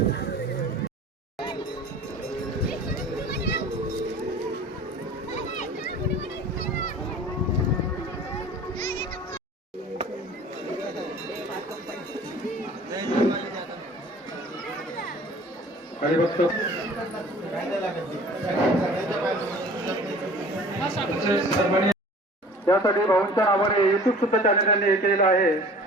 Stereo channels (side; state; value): both; normal; correlation 0.46